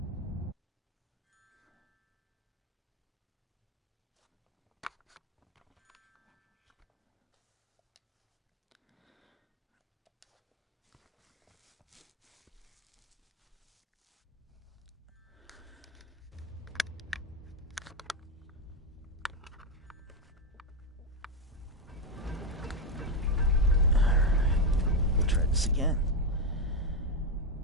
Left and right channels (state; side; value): normal; both; correlation 0.07